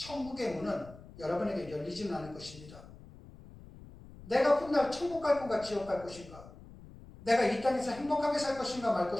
문은 여러분에게 열리지는 않을 것입니다. 내가 훗날 천국 갈 건가 지옥 갈 것인가? 내가 이 땅에서 행복하게 살 것인가 말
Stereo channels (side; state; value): left; noise; rumble, 18 dB below the sound